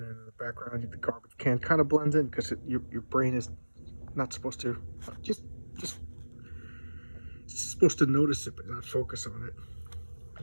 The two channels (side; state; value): both; inverted; correlation -1.00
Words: then in the background, the garbage can kind of blends in because your brain is not supposed to just supposed to notice it but not focus on it.